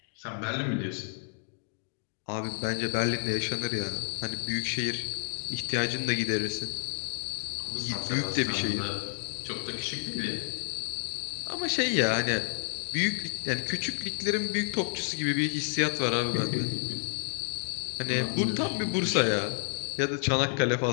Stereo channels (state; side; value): silent; right; 58 dB below the other